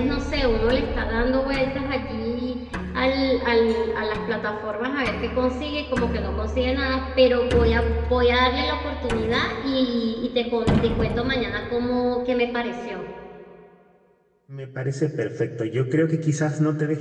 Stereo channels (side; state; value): both; identical; correlation 1.00